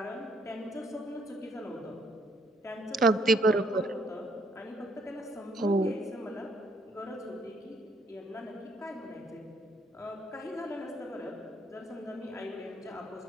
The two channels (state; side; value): normal; both; correlation 0.67